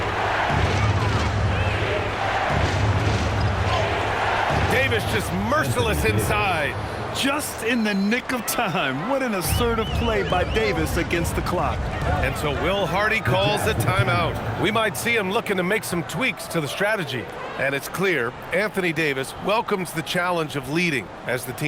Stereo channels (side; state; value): both; identical; correlation 1.00